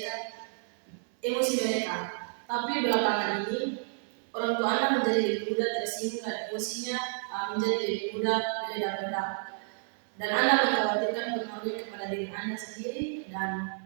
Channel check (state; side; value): silent; left; 57 dB below the other